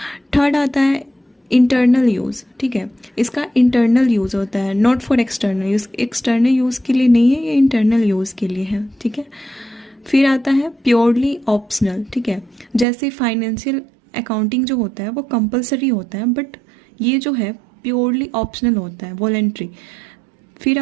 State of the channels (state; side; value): drops out; left; at 12.9 s